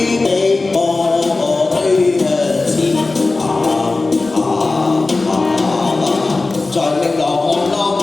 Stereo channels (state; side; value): quieter; right; 3.5 dB